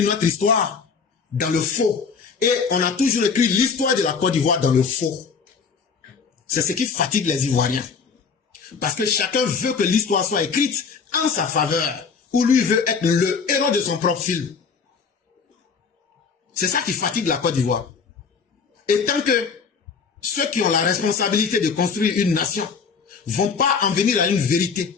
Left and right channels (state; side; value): quieter; right; 5.6 dB